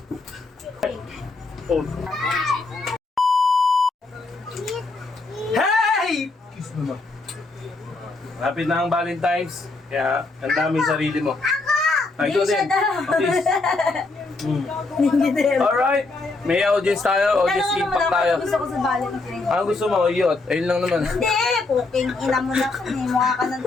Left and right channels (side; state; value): right; quieter; 3.4 dB